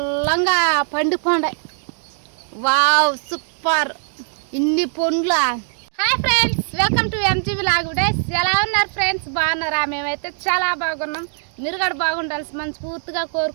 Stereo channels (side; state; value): left; silent; digital silence